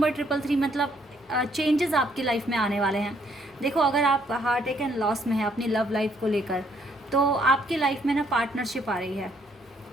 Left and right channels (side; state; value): both; normal; correlation 0.69